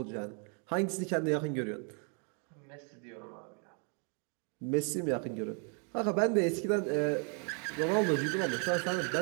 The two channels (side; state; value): left; quieter; 39.4 dB